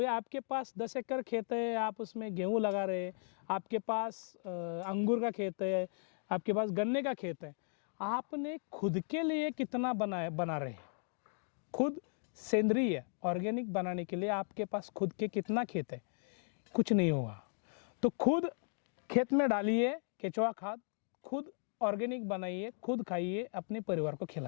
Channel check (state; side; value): silent; right; 53 dB below the other